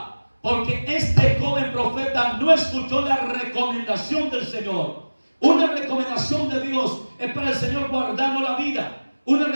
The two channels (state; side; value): inverted; both; correlation -1.00